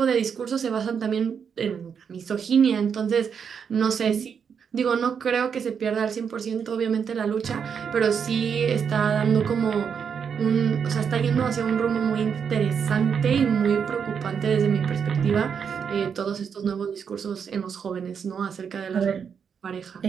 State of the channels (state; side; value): quieter; left; 6.9 dB